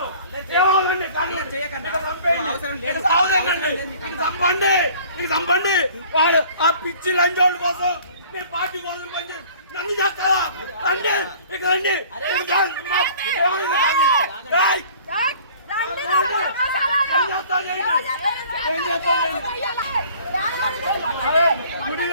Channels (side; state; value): both; inverted; correlation -0.50